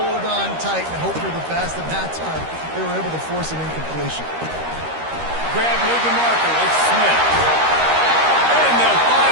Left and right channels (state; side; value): late; left; 13 ms